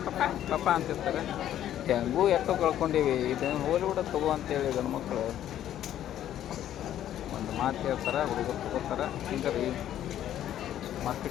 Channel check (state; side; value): quieter; right; 11.5 dB